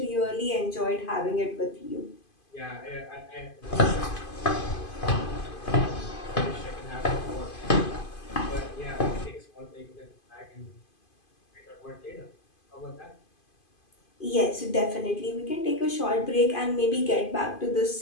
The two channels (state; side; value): late; right; 2.5 ms